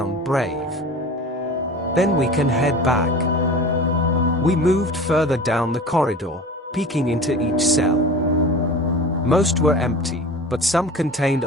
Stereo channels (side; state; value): both; normal; correlation 0.36